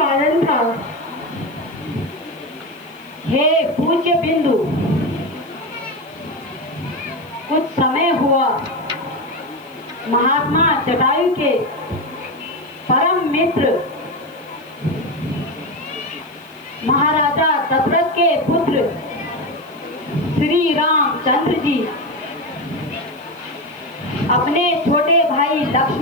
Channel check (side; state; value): left; noise; hiss, 29 dB below the sound